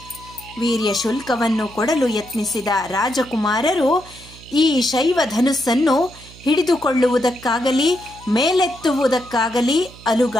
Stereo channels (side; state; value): right; noise; hum, 20 dB below the sound